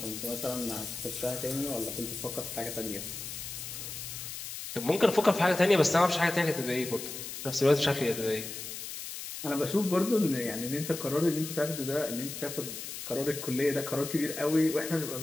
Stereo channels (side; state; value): left; noise; hiss, 8 dB below the sound